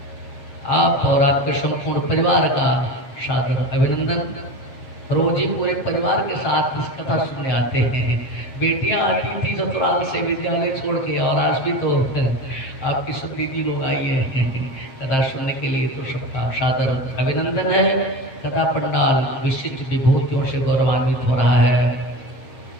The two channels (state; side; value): late; right; 7.8 ms